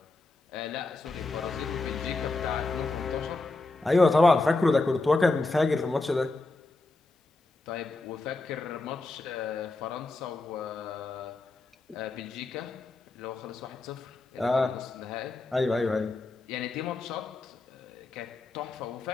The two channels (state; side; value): quieter; right; 3.3 dB